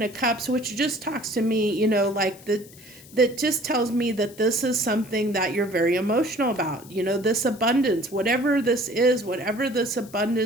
of Cups, which just talks to me, like that just tells me that this is something that you're very emotional about, this abundance, whatever this is, whatever this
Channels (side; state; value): left; noise; hiss, 21 dB below the sound